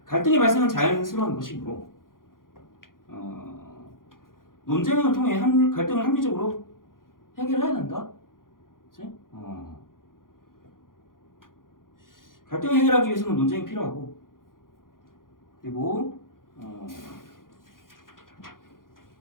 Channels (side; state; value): right; late; 0.91 ms